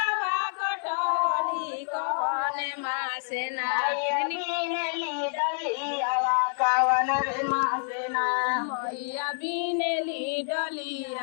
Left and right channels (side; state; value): right; silent; 59 dB below the other